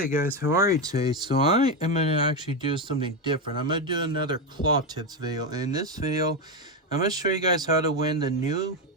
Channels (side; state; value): both; normal; correlation 0.10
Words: guys, how are you today? So I am going to actually do something different. I'm going to do another claw tips video. And in this video, I'm going to show you guys how to win the new